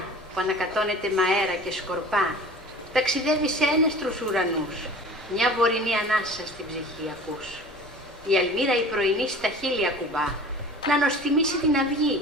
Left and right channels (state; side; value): normal; both; correlation 0.41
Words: που ανακατώνεται με αέρα και σκορπά, ταξιδεύει σε ένεστρους ουρανούς. Μια βορεινή ανάσα στην ψυχή ακούς. Η αλμύρα η πρωινή στα χείλη ακουμπά, να νοστιμήσει την αυγή,